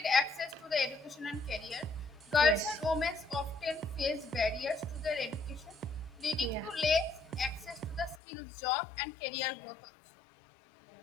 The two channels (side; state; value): right; drops out; at 8.2 s